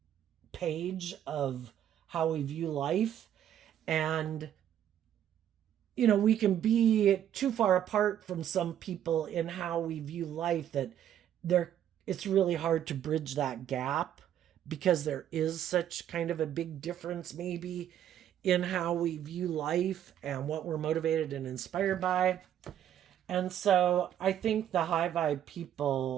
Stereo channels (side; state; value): left; quieter; 10.5 dB